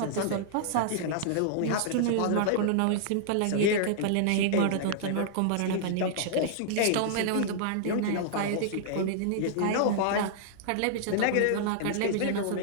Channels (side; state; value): both; different; correlation -0.02